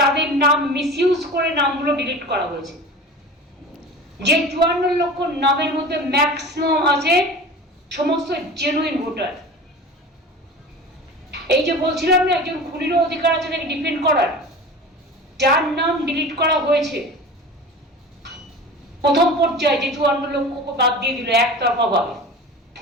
নাম মিসইউজ করে নামগুলো ডিলিট করা হয়েছে। যে 54 লক্ষ নামের মধ্যে ম্যাক্সিমাম আছে সমস্ত জেনুইন ভোটার। এই যে বলছিলাম না একজন খুনিরও অধিকার আছে তাকে ডিফেন্ড করার, যার নাম ডিলিট করা হয়েছে প্রথম পর্যায়ে, যে 54 লক্ষ বাদ দিয়ে দিল একতরফা ভাবে,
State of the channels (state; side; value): normal; both; correlation 0.36